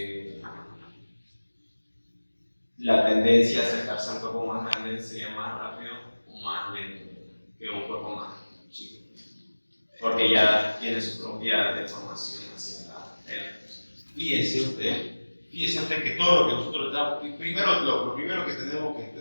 la tendencia a acercarse a un cuerpo más grande sería más rápido o más lento que un cuerpo más chico, porque ya tiene su propia deformación hacia la era. Fíjese usted que todo lo que nosotros estamos, lo primero que tenemos que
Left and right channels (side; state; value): both; inverted; correlation -1.00